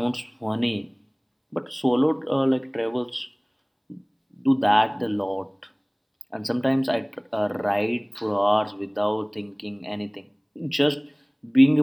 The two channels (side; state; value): both; identical; correlation 1.00